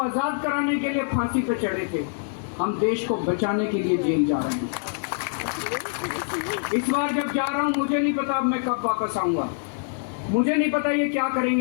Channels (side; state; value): right; silent; digital silence